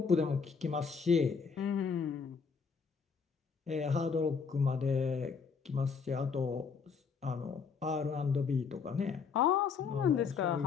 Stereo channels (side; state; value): right; quieter; 5.7 dB